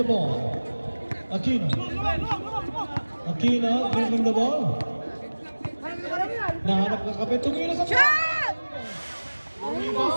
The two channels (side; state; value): both; inverted; correlation -1.00